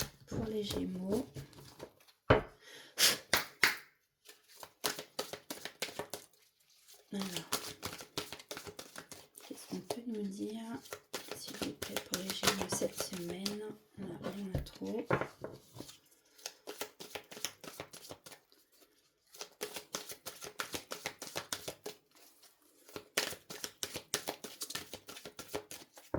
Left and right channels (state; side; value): identical; both; correlation 1.00